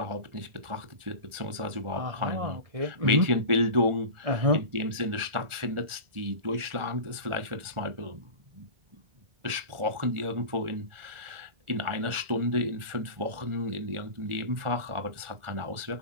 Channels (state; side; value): late; left; 1.4 ms